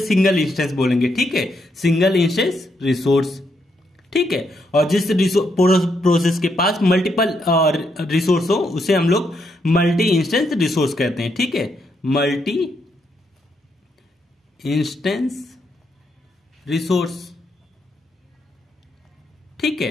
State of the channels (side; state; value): both; normal; correlation 0.78